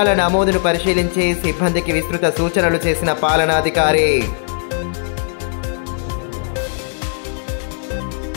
నమోదును పరిశీలించి సిబ్బందికి విస్తృత సూచనలు చేసిన పాలనాధికారి.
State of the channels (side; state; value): right; silent; 58 dB below the other